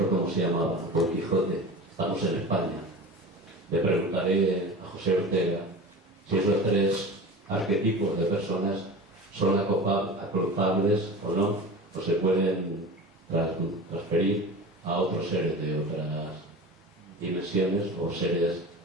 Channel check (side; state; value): both; normal; correlation 0.33